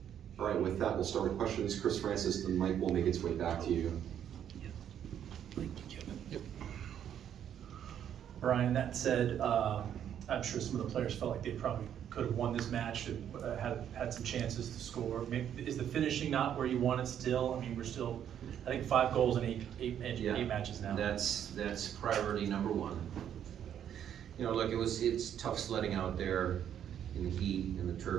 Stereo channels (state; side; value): quieter; left; 9.6 dB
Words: All right, with that, we'll start with questions. Chris Francis, the mic will make its way back to you. Thank you, Kevin. Yep. Brian, that said, I'm sure some of the players felt like they probably could have won this match and had some chances to score. Maybe, is the finishing not where you want it still? I mean, we're still, I think 5 goals in eight matches now. That's priority number one. Look, it's tough sledding out there in the heat, and the